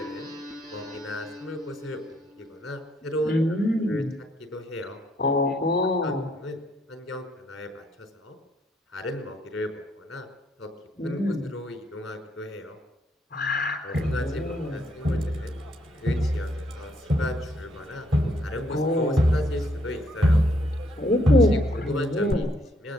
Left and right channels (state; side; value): normal; both; correlation 0.71